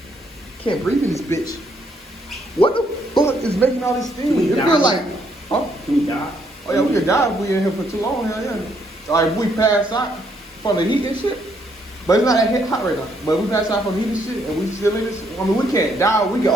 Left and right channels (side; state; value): both; normal; correlation 0.72